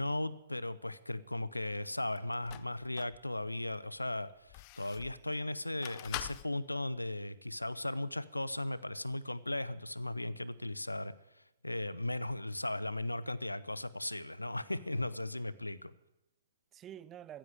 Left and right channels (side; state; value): both; inverted; correlation -0.95